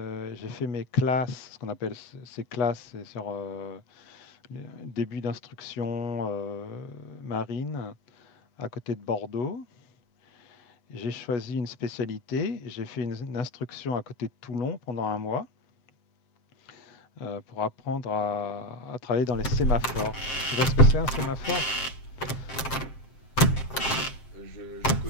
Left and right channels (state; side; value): late; right; 7.6 ms